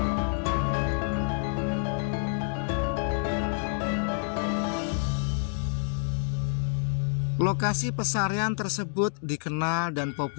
Lokasi pesarian tersebut dikenal dan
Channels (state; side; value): silent; right; 59 dB below the other